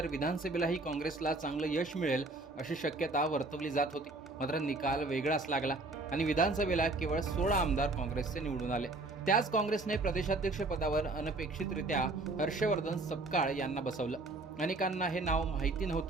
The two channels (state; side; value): quieter; left; 3.1 dB